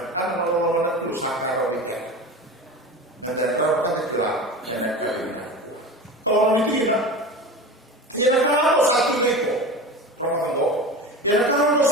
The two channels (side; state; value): both; normal; correlation 0.30